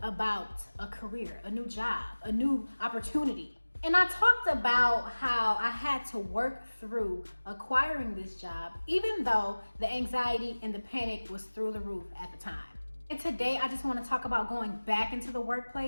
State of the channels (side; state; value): both; inverted; correlation -1.00